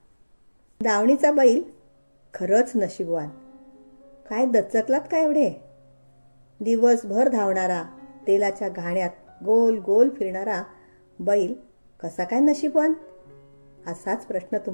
दावणीचा बैल खरंच नशीबवान. काय दचकलात का एवढे? दिवसभर धावणारा, तेलाच्या घाण्यात गोल गोल फिरणारा बैल कसा काय नशीबवान? असाच प्रश्न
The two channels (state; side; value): inverted; both; correlation -1.00